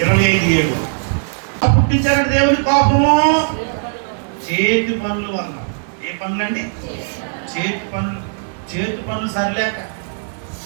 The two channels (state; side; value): silent; left; digital silence